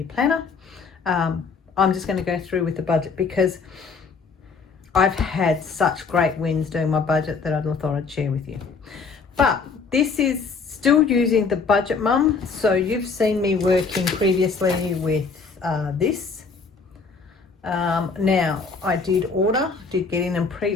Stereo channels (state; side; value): quieter; right; 4.9 dB